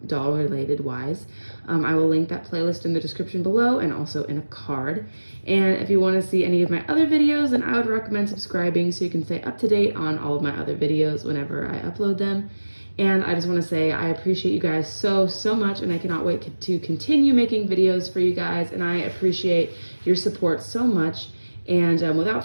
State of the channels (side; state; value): both; inverted; correlation -1.00